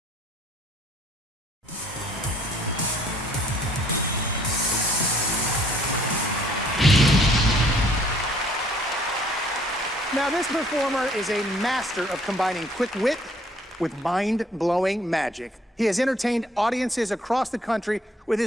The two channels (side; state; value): both; normal; correlation 0.60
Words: Now, this performer is a master of combining quick wit with mind-blowing magic. He has entertained audiences across the country with